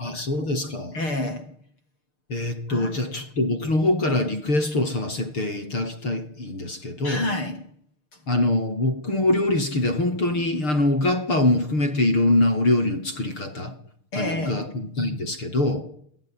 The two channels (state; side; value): late; right; 6.6 ms